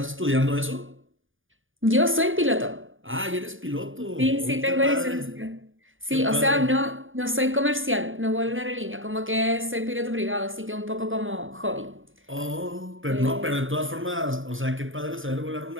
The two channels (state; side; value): late; left; 0.58 ms